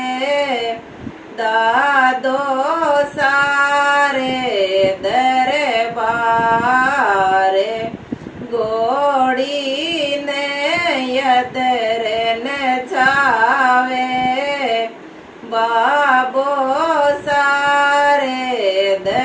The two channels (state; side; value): identical; both; correlation 1.00